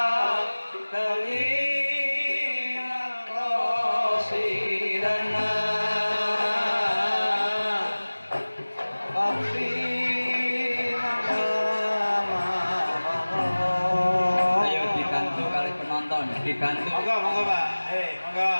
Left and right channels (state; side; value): inverted; both; correlation -1.00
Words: dibantu. Monggo, monggo Pak. Monggo.